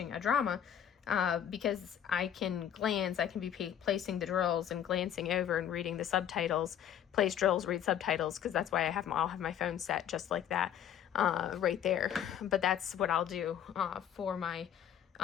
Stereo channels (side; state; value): right; quieter; 9.7 dB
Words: a drama because I can glance. I can be placing the drills and glancing over and reading the subtitles, place drills, read subtitles, because that's why I'll have my phone set just like that right there. But that's what I'll do for my